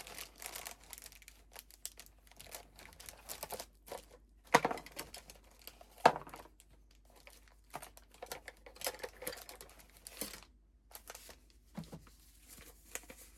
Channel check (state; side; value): identical; both; correlation 1.00